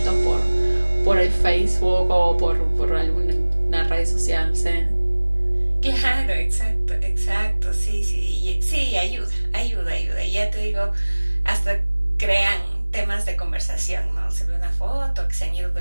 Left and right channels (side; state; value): both; inverted; correlation -1.00